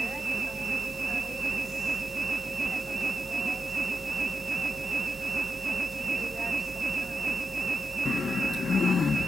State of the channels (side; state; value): both; normal; correlation 0.89